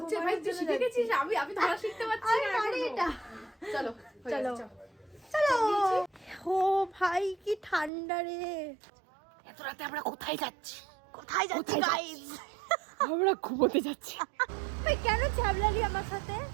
ভাই, তুই শিখে গেছিস, আমি ধরা শিখতে পারছি না এটা। চলো চলো চলো। ও ভাই কি ঠান্ডা রে। এত রাতে আমরা কোথায় যাচ্ছি? কোথায় যাচ্ছি গাইস? আমরা ঘুমোতে যাচ্ছি। ভাই কেন ছ্যাবলালি আমার সাথে?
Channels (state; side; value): drops out; left; at 7.9 s